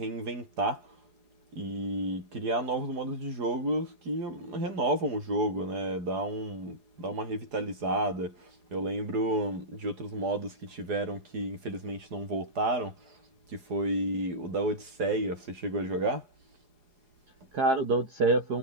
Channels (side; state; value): left; late; 4.8 ms